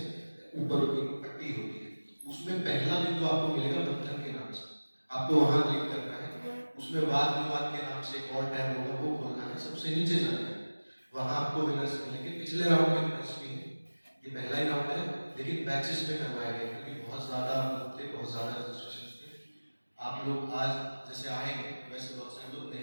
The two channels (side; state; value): both; inverted; correlation -1.00